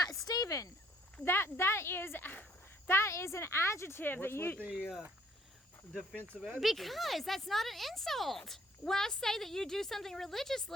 Stephen, that is an adjective. What's that you with the defensive adjective? because that's not an insult. When I say that you do something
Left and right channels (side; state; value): both; normal; correlation 0.62